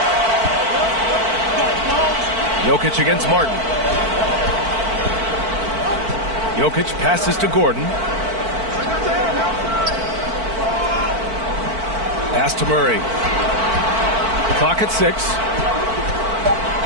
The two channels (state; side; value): late; left; 4.5 ms